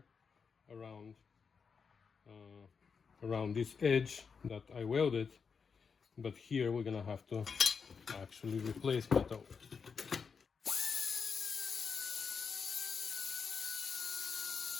around this edge that I welded, but here we're gonna have to actually replace metal.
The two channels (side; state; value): right; quieter; 5.8 dB